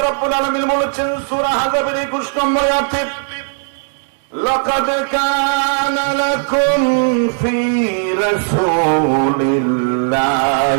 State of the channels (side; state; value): left; silent; digital silence